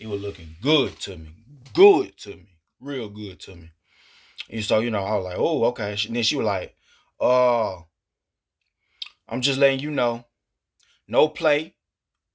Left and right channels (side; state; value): both; identical; correlation 1.00